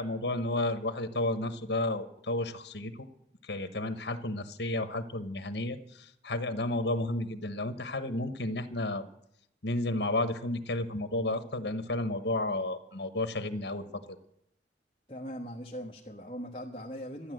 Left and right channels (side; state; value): both; normal; correlation 0.09